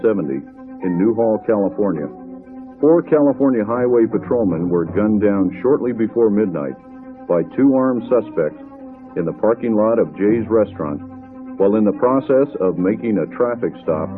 in Newhall, California, 4 California highway patrolmen were gunned down shortly before midnight by 2 armed suspects in the parking lot of Jay's Restaurant while in the process of making a traffic stop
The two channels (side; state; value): both; identical; correlation 1.00